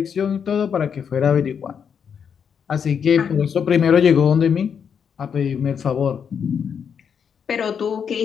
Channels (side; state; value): right; quieter; 7.2 dB